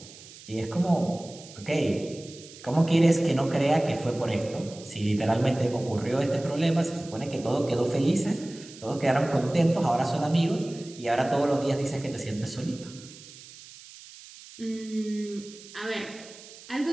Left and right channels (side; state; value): right; noise; hiss, 18 dB below the sound